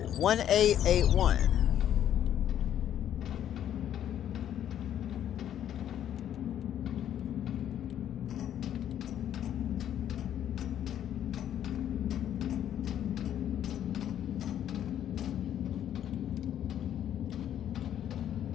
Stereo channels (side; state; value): right; quieter; 10.6 dB